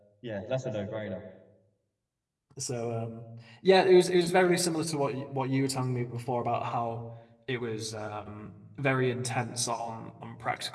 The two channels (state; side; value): identical; both; correlation 1.00